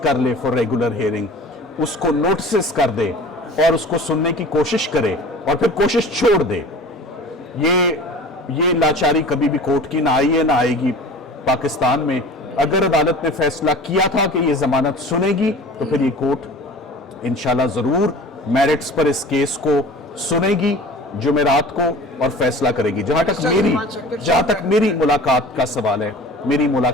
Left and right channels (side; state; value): both; normal; correlation 0.41